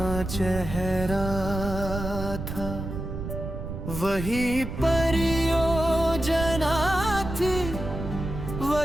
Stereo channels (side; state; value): right; noise; rumble, 6 dB below the sound